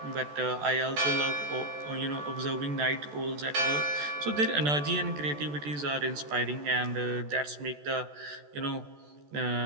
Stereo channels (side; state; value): left; late; 14 ms